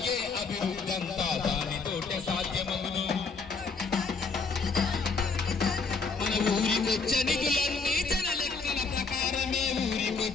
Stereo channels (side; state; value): right; quieter; 4.6 dB